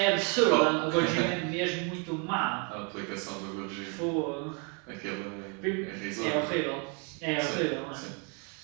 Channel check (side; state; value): left; quieter; 36.1 dB